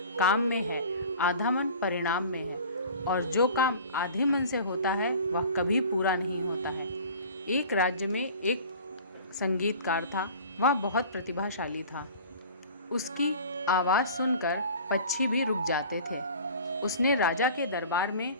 काम में है, आधा मन परिणाम में है, और जो काम आधे मन से होता है वह कभी पूरा नहीं होता है। एक राज्य में एक संगीतकार था। वह बहुत प्रतिभाशाली था। उसकी आवाज़ सुनकर पक्षी भी रुक जाते थे। उसने राजा के दरबार में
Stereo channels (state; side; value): inverted; both; correlation -0.42